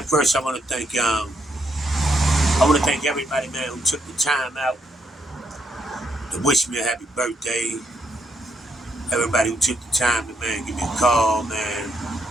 first I want to thank everybody, man, who took the time out to wish me a happy birthday. Everybody who took the time to, man, give me a call, man,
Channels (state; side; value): normal; both; correlation 0.77